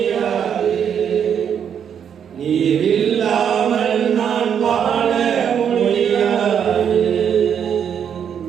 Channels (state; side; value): quieter; left; 8.2 dB